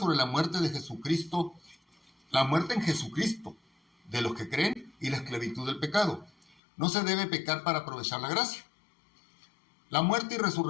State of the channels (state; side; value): drops out; right; at 6.6 s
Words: la muerte de Jesucristo, la muerte en Jesucristo, de los que creen, y la esclavitud del pecado. No se debe pecar para aprovechar la gracia. La muerte y